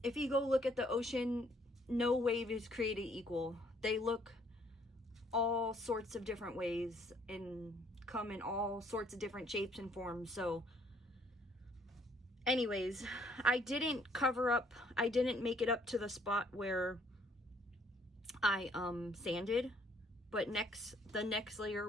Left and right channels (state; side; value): normal; both; correlation 0.64